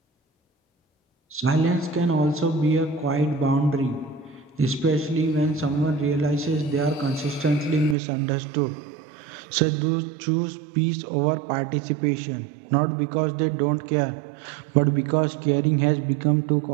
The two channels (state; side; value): drops out; left; at 8.0 s